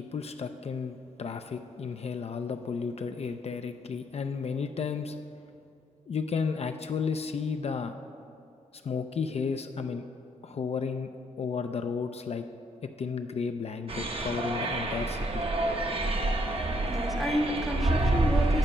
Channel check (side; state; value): both; normal; correlation 0.71